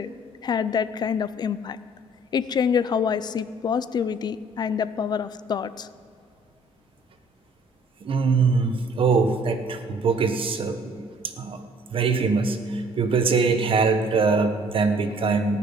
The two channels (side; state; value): both; normal; correlation 0.56